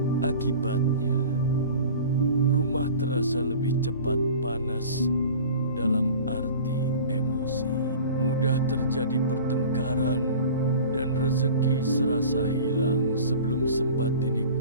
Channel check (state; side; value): inverted; both; correlation -0.40